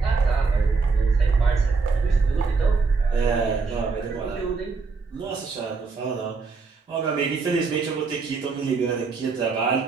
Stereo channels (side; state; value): left; quieter; 4.5 dB